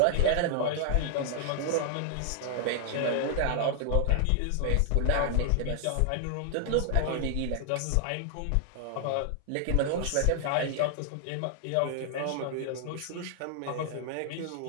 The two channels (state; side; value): different; both; correlation 0.00